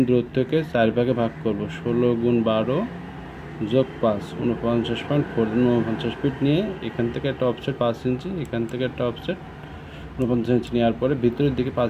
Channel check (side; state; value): both; identical; correlation 1.00